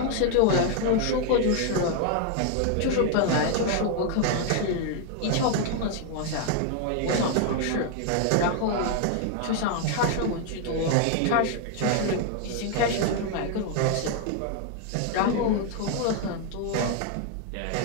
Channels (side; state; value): both; different; correlation 0.00